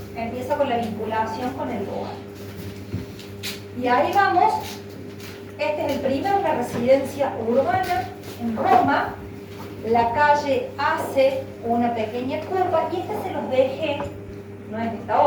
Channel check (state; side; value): identical; both; correlation 1.00